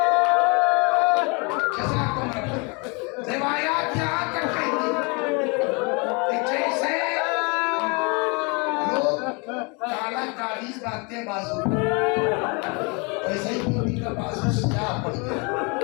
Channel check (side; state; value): right; quieter; 31.3 dB